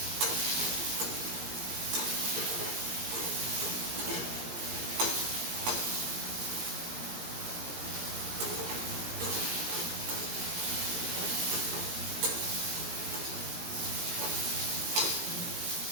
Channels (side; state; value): left; late; 17 ms